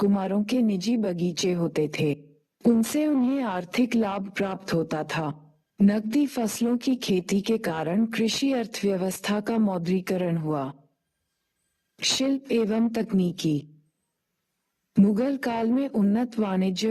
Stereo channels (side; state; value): both; identical; correlation 1.00